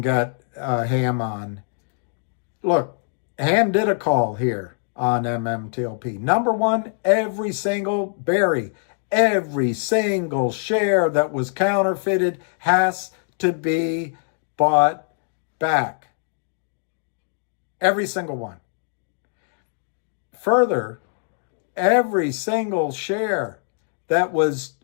get Ham on. Look, Ham did a call here on MMTLP. Number one, every single share that was counterfeited has to be bought back. Every single one. Further, every single share that was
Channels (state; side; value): silent; right; digital silence